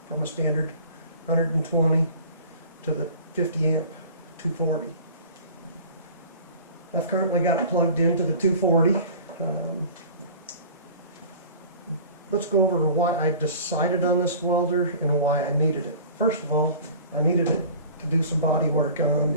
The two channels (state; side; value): inverted; both; correlation -0.43